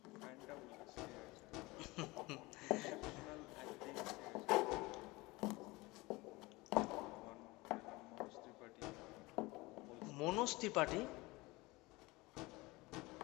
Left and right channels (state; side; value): quieter; right; 22.4 dB